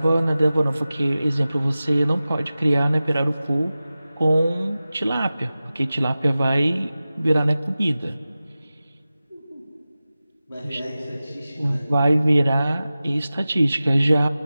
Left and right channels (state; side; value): inverted; both; correlation -0.96